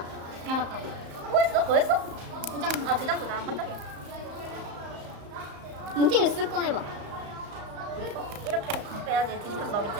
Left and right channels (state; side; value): late; left; 34 ms